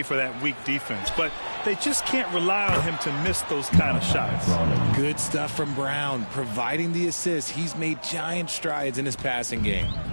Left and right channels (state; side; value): inverted; both; correlation -1.00